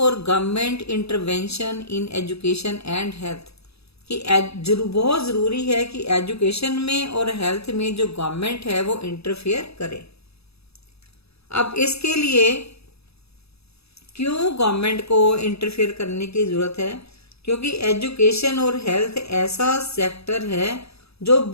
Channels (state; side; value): late; right; 0.78 ms